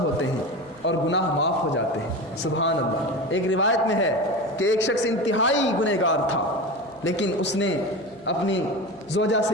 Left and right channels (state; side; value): noise; left; hum, 30 dB below the sound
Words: ہیں اور گناہ معاف ہو جاتے ہیں۔ سبحان اللہ۔ ایک روایت میں ہے کہ ایک شخص انتہائی گنہگار تھا، لیکن اس نے اپنی زوجہ